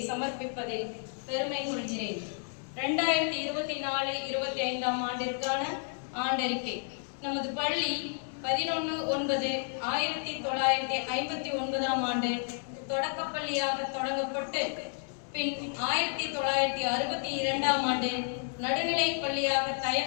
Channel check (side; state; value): right; silent; 57 dB below the other